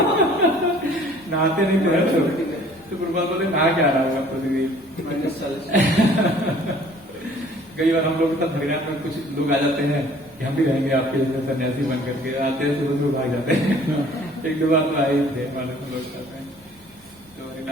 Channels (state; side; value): normal; both; correlation 0.54